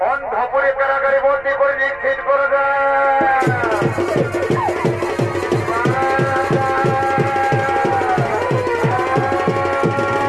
অন্ধপুরে কারাগারে বন্দী করে নিক্ষেপ করে দেয়।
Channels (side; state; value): right; noise; rumble, 24 dB below the sound